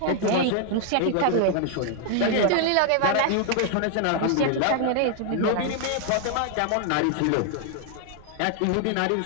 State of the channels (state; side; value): different; both; correlation 0.00